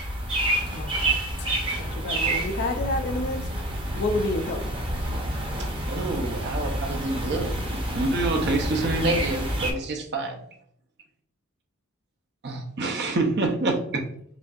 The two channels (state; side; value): normal; both; correlation 0.42